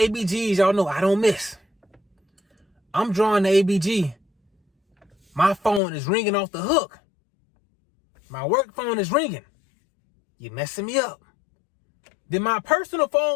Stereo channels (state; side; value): drops out; right; at 5.8 s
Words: Y'all know I don't miss. I'm drawing the ABG. My phone is ringing off the hook. My work phone is ringing. You messing me up. Then my personal phone